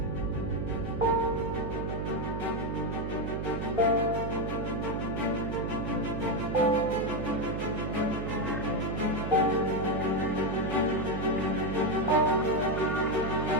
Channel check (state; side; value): noise; right; hum, 3 dB below the sound